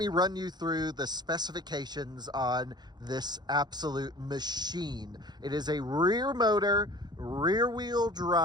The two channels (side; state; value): left; late; 0.21 ms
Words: run you through the specifications on this absolute machine. It is a rear motor, rear wheel